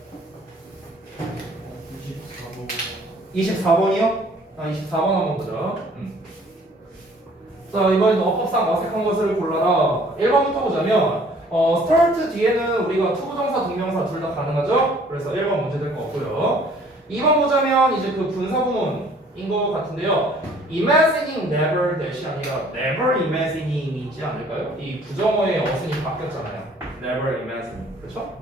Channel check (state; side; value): normal; both; correlation 0.56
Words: 24번이요? 24번 한번 보자. 자, 이번엔 어법상 어색한 것을 골라라. 1번부터 보자면 start 뒤에는 우리가 투부정사, 동명사 둘 다 가능하죠? 그래서 1번 문제 될 거 없고요. 2번 보자면 이제 그 분사구문인 것 같은데요. imagining never 대시 아니라 never imagining이지 않을까요? 이 부정어의 어순이 바뀌었잖아요. never imagining. 그렇죠?